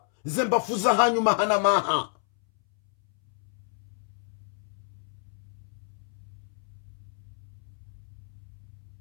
Zembafuza hanyu mahana maha.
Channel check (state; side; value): silent; right; 58 dB below the other